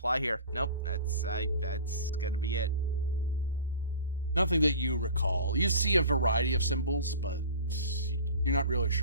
here. Nope, that's gonna be it. Nothing that you recall. You see a variety of symbols, but you're not really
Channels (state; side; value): inverted; both; correlation -0.39